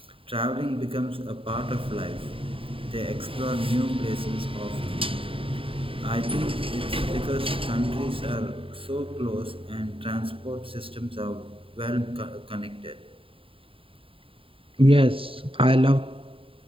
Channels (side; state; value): left; late; 0.26 ms